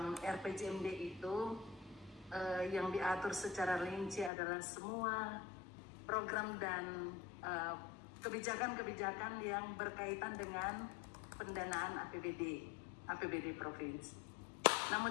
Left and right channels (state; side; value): drops out; right; at 4.3 s